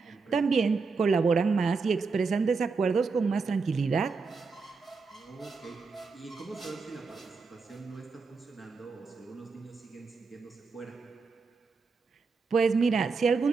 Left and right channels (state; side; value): quieter; left; 4.6 dB